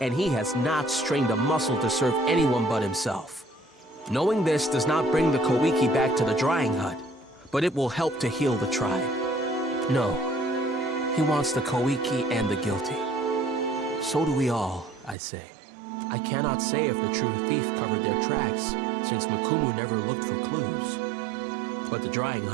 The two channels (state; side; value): drops out; left; at 15.2 s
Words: and he has not strained a muscle to serve anyone but himself. Knowing this does not bring the Koiki back to the drying hut, but it will help to heal the tribe. No, he wants the Koiki and the guilty. So do we all, I say. I cannot say if the true thief covered their tracks, since Makumu never looked for clues. But the drying